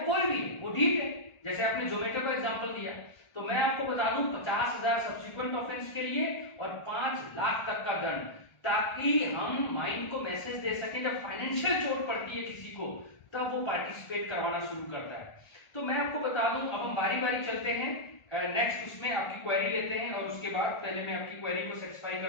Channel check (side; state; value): right; late; 1.4 ms